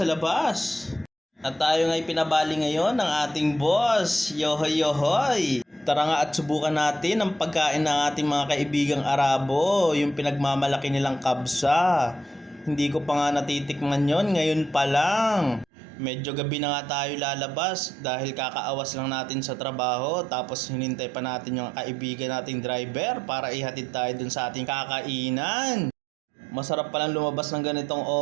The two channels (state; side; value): drops out; left; at 15.7 s